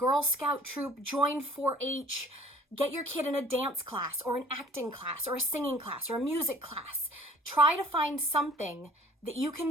Scout troop, join 4-H, get your kid in a dance class or an acting class or a singing class or a music class. Try to find something that you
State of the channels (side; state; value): both; normal; correlation 0.51